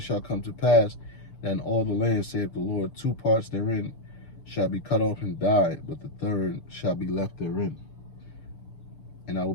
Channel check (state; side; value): late; right; 6.8 ms